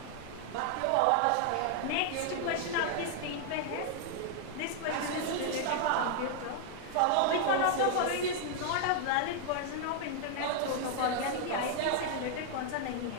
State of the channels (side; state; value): both; different; correlation 0.00